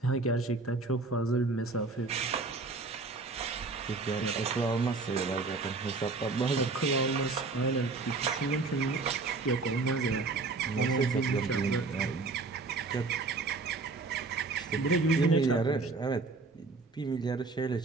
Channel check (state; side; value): quieter; left; 3.8 dB